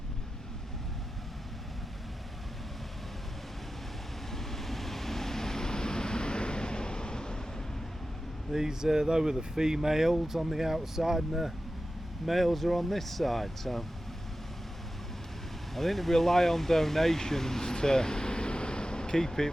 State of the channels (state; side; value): normal; both; correlation 0.93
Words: they were the females on the outside and the males are on this side, so I think they rely on donations to keep it